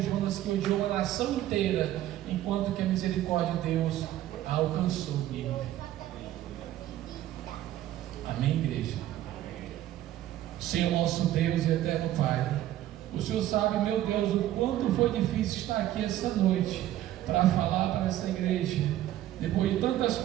Jonas, que odiou a nação inteira, enquanto que a misericórdia de Deus a alcançou. Amém, igreja? Senhor nosso Deus e eterno Pai, o Senhor sabe, meu Deus, o quanto foi difícil estar aqui essa noite para falar para essa igreja, depois de tantas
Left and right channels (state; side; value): quieter; left; 13.4 dB